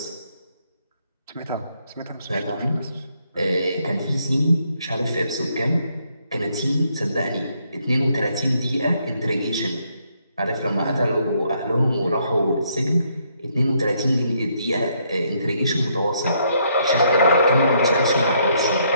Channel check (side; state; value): both; inverted; correlation -0.72